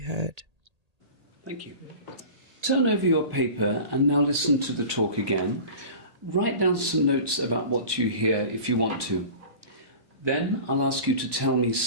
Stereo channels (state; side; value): late; left; 1.2 ms